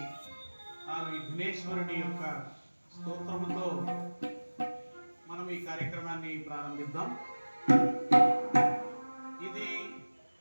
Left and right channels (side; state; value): both; inverted; correlation -1.00